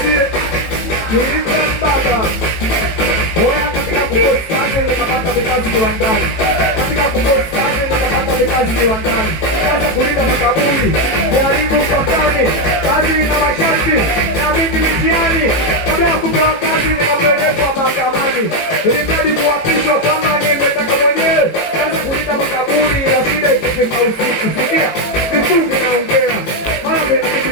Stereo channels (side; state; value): right; late; 18 ms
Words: Nilipembaba. Oya katika kupost kazi nikapata vikazi viwandani. Katika kupost kazi nikapata vikazi viwandani. Kaza kulinda makaburi, kuharibu mpakani, kazi na masharti na mingi mitiani. Kabla ya kupewa kazi nikapelekwa mahakamani. Ilimradi kuapishwa kama nimetaka mwenyewe. Kaza kulinda makaburi ila shida ikifika usiku. Sikia, vifungi naongea, mara mengi